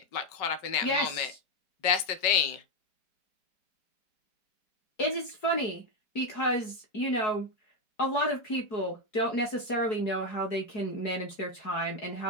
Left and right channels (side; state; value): right; late; 4.7 ms